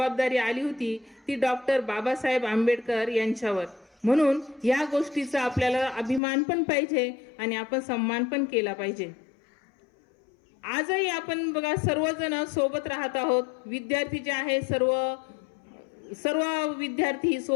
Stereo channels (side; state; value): right; drops out; at 6.2 s